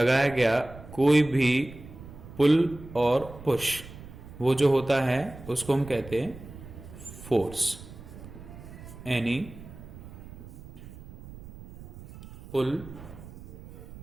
गया कोई भी पुल और पुश, वो जो होता है उसको हम कहते हैं फोर्स. एनी पुल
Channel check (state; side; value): noise; right; rumble, 16 dB below the sound